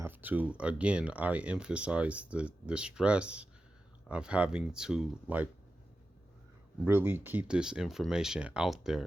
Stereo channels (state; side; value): normal; both; correlation 0.92